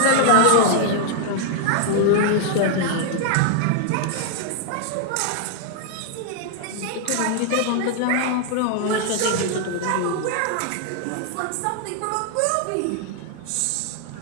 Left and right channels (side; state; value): both; different; correlation 0.00